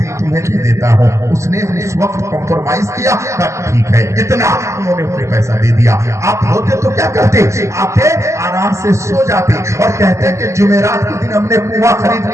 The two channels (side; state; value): left; late; 0.14 ms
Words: تمہیں دے دیتا ہوں. اس نے اس وقت کمپرومائز کیا, ٹھیک ہے اتنا, انہوں نے انہیں پیسہ دے دیا. آپ ہوتے تو کیا کرتے؟ آتے آرام سے سو جاتے اور کہتے کہ جمعرات کے دن ہم نے کنواں خرید